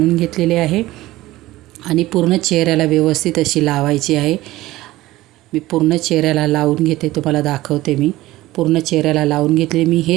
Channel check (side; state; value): left; quieter; 17.3 dB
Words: घेतलेली आहे आणि पूर्ण चेहऱ्याला व्यवस्थित अशी लावायची आहे. मी पूर्ण चेहऱ्याला लावून घेते, तुम्हाला दाखवते. मी पूर्ण चेहऱ्याला लावून घेतले. मी